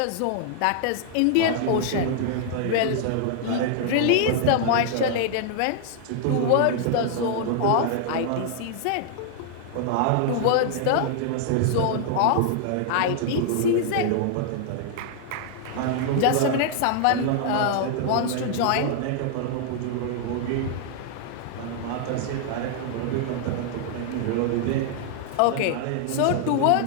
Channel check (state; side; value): different; both; correlation 0.00